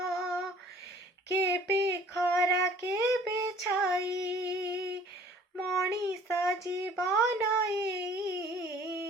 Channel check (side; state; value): both; normal; correlation 0.52